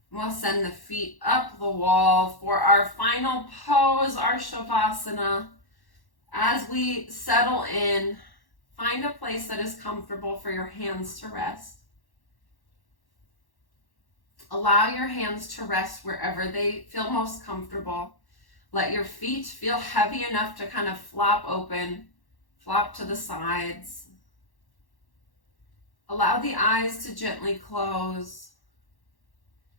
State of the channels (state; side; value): late; right; 1.1 ms